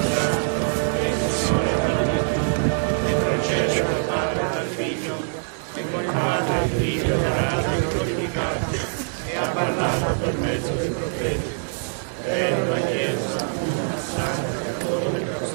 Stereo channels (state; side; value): silent; left; digital silence